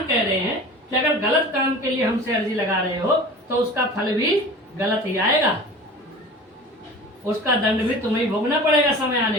कह रहे हैं कि अगर गलत काम के लिए हमसे अर्जी लगा रहे हो तो उसका फल भी गलत ही आएगा, उसका दंड भी तुम्हें भोगना पड़ेगा समय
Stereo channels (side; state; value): both; normal; correlation 0.39